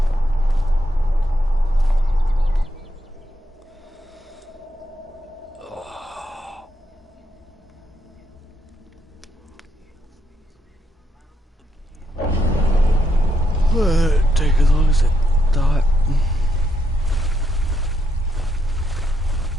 Well, it take as long as it thought.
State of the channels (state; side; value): normal; both; correlation 0.79